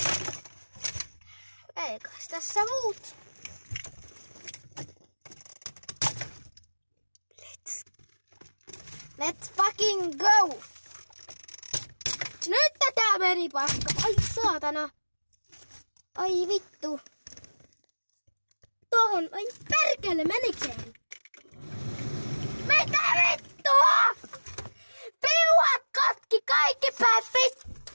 Eikös tässä muut? Let's fucking go! Nyt tää meni paska. Ai saatana. Ai vittu. Tohon. Ai perkele, menikään? Mitä vittua? Piuhat katki kaikki päät vittu.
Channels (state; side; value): inverted; both; correlation -1.00